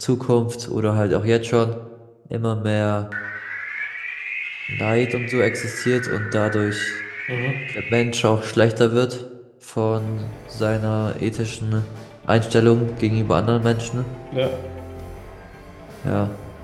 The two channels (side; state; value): both; identical; correlation 1.00